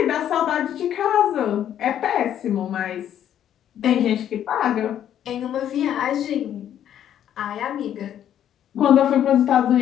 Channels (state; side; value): quieter; right; 10.4 dB